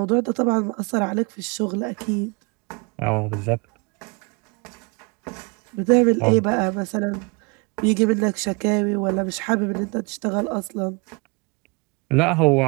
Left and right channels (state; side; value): quieter; left; 30.7 dB